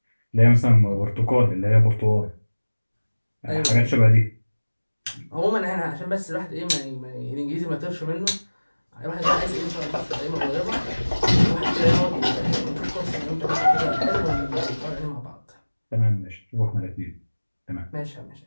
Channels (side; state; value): both; inverted; correlation -1.00